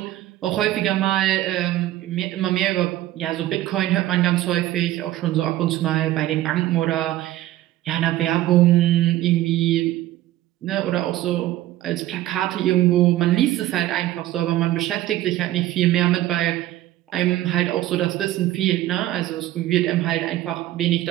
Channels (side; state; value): left; quieter; 14.8 dB